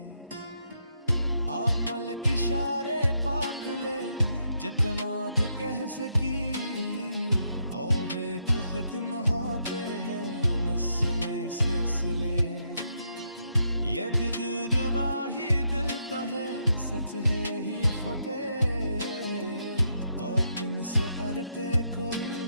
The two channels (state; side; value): inverted; both; correlation -0.78